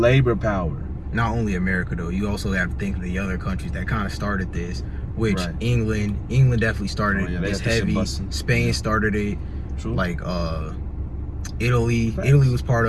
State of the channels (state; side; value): identical; both; correlation 1.00